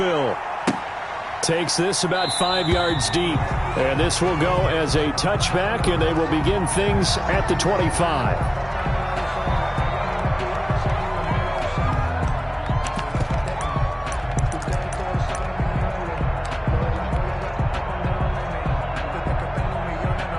Takes this about 5 yards deep, and this will go as a touchback, and they will begin things at the 25.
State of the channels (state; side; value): identical; both; correlation 1.00